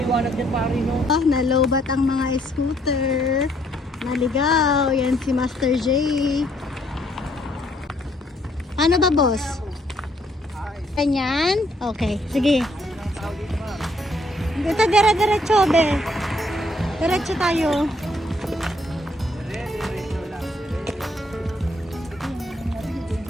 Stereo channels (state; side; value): normal; both; correlation 0.69